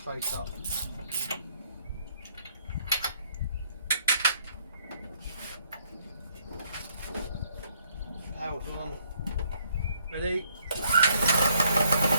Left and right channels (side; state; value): both; inverted; correlation -0.68